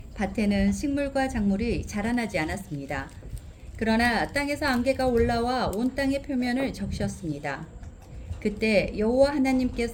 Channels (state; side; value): identical; both; correlation 1.00